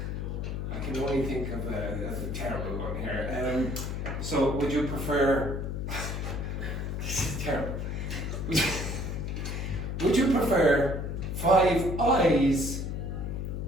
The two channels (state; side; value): noise; left; hum, 3 dB below the sound